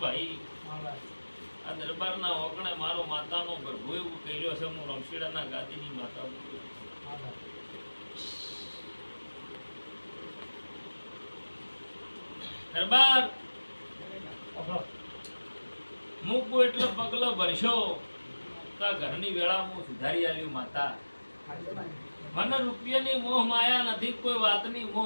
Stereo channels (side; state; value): both; inverted; correlation -1.00